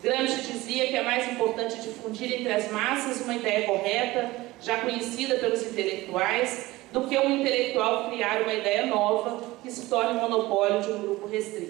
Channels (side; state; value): left; quieter; 19.1 dB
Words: Gramsci dizia que é mais importante difundir entre as massas uma ideia correta, já conhecida pelos intelectuais, do que um intelectual criar uma ideia nova que se torne monopólio de um grupo